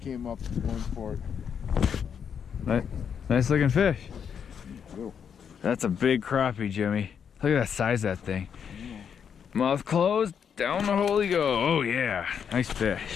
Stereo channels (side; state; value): right; quieter; 7.5 dB